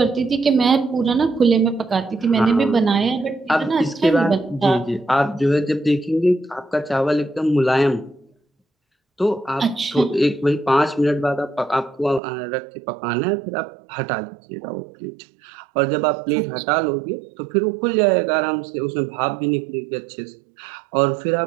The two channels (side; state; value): left; drops out; at 12.2 s